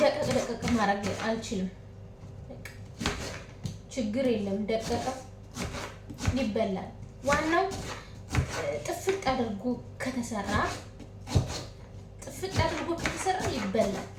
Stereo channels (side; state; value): both; identical; correlation 1.00